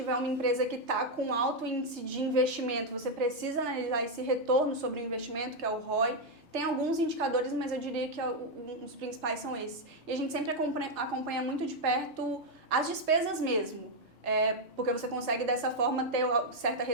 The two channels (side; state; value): both; normal; correlation 0.01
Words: uma empresa que está com alto índice de investimento, você precisa analisar esse retorno sobre o investimento, que é o ROI. Tem alguns indicadores, mas eu diria que os principais são esses. E a gente sempre acompanha muito de perto as despesas mesmo. Porque você consegue dessa forma ter certa